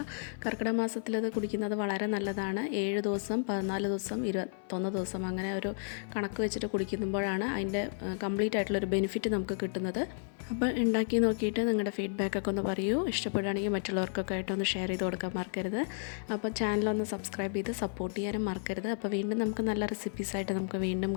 കർക്കിടക മാസത്തിലത് കുടിക്കുന്നത് വളരെ നല്ലതാണ്. 7 ദിവസം, 14 ദിവസം, 21 ദിവസം അങ്ങനെ ഒരു കണക്ക് വെച്ചിട്ട് കുടിക്കുമ്പോഴാണ് അതിൻ്റെ കംപ്ലീറ്റ് ആയിട്ടുള്ളൊരു ബെനിഫിറ്റ് നമുക്ക് കിട്ടുന്നത്. അപ്പോൾ ഉണ്ടാക്കി നോക്കിയിട്ട് നിങ്ങളുടെ ഫീഡ്ബാക്കൊക്കെ ഒന്ന് പറയൂ. ഇഷ്ടപ്പെടുകയാണെങ്കിൽ മറ്റുള്ളവർക്കൊക്കെ ആയിട്ടൊന്ന് ഷെയർ ചെയ്ത് കൊടുക്കാൻ മറക്കരുത്. അപ്പോൾ ചാനലൊന്ന് സബ്സ്ക്രൈബ് ചെയ്ത് സപ്പോർട്ട് ചെയ്യാനും മറക്കരുത്. അപ്പോൾ വീണ്ടും നമുക്ക് നല്ല റെസിപ്പീസായിട്ട് നമുക്ക് വീണ്ടും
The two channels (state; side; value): silent; right; 56 dB below the other